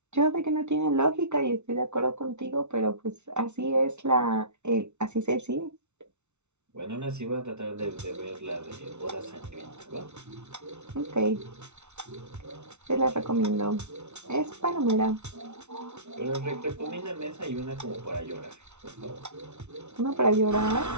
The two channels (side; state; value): left; late; 0.82 ms